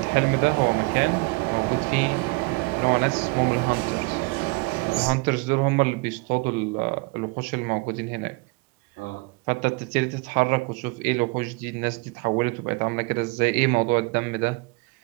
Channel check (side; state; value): left; quieter; 27.3 dB